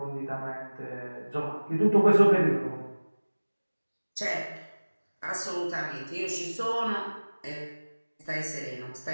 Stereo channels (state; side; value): inverted; both; correlation -1.00